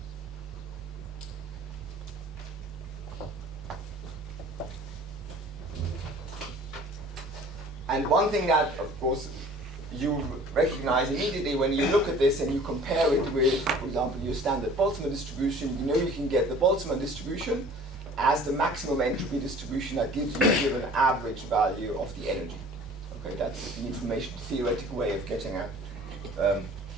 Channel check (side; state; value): both; normal; correlation 0.48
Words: And one thing that, of course, you recognize immediately when you look at this and you compare it with, for example, your standard Boltzmann distribution, you know you can get the Boltzmann distribution as the maximum entropy distribution that gives you a given average value of the energy. Okay, that's the information theoretical way of getting at